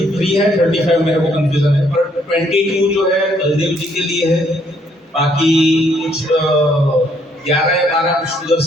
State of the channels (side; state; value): both; normal; correlation 0.68